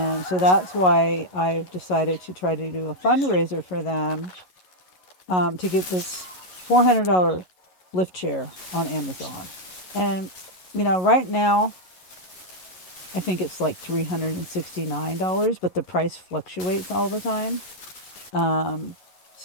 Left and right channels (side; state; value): right; late; 11 ms